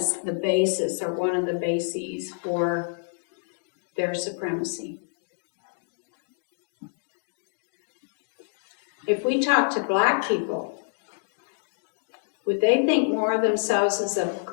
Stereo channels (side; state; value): right; silent; digital silence